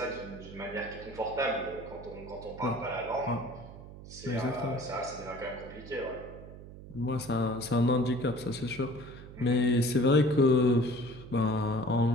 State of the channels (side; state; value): right; noise; hum, 15 dB below the sound